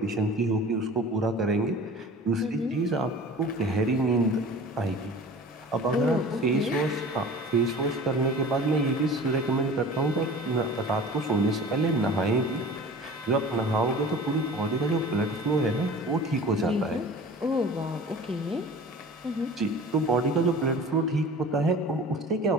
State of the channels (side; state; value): both; normal; correlation 0.41